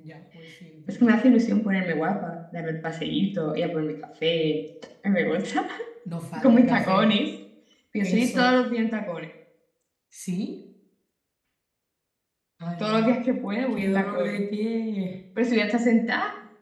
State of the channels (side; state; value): both; identical; correlation 1.00